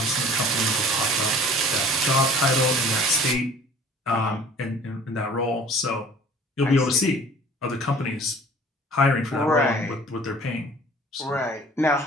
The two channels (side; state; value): both; normal; correlation 0.49